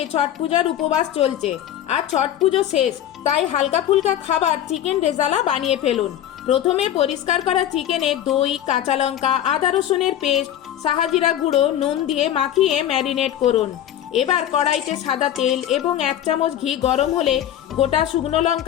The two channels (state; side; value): quieter; right; 11.3 dB